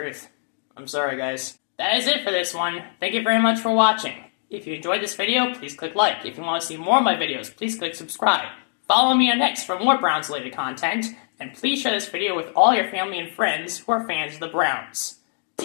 I'm sorry, guys. That is it for this one. Thank you very much for watching. If you enjoyed this video, please click like. If you want to see more of my videos, please click subscribe. Follow me on X for more Browns-related content, and please share this video with all your family and friends who are fans of the Browns.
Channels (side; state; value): right; silent; 57 dB below the other